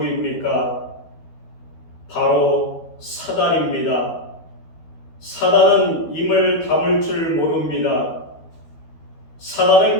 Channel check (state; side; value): late; right; 12 ms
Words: 바로 사단입니다. 사단은 입을 다물 줄 모릅니다. 사단은